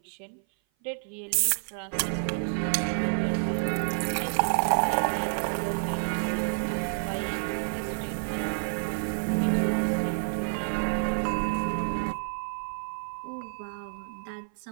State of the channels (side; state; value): left; silent; 56 dB below the other